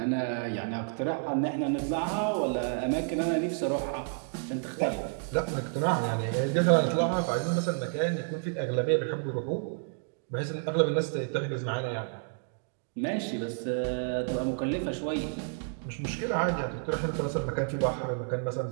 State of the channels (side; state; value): left; silent; 58 dB below the other